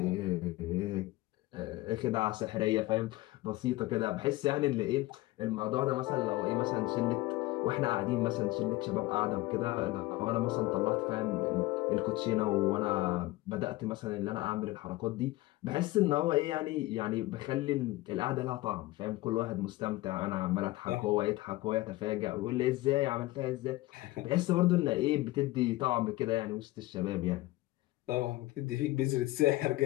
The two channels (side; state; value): right; quieter; 18.9 dB